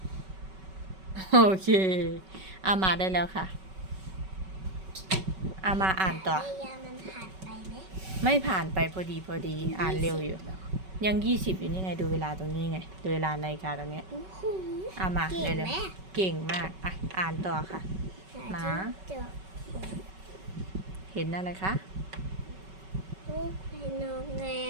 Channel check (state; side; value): late; left; 5.3 ms